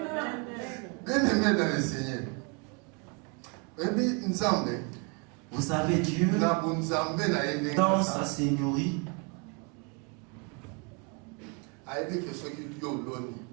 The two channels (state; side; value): quieter; left; 34.3 dB